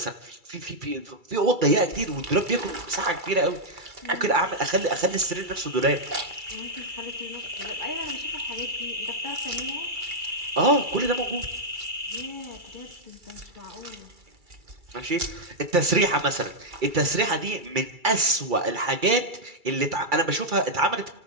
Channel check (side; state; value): left; late; 2.3 ms